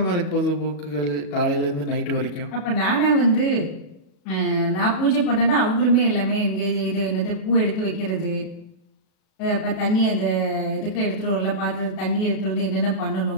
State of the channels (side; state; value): right; late; 37 ms